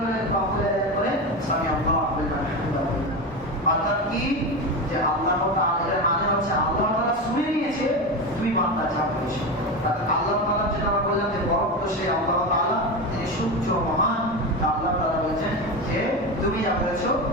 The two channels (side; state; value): both; normal; correlation 0.20